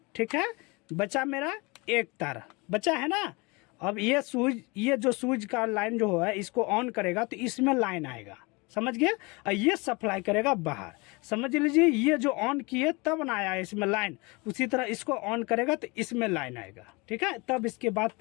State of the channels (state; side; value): quieter; right; 26.9 dB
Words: ठीक है। बचा मेरा एक तार बचा है ना। अब ये स्विच, ये जो स्विच का लाइन जो है इसको ऑन करेगा तो इसमें लाइन आएगा, समझ गए। और ये सप्लाई करेगा बाहर, समझ लीजिए। ये जो ऑन किए तब ना आया इसमें लाइन, उसी तरह इसको ऑन करेगा तो इसमें लाइन आएगा, ठीक है। तब इसके बाद